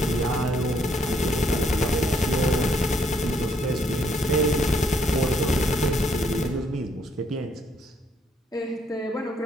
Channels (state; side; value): normal; both; correlation 0.70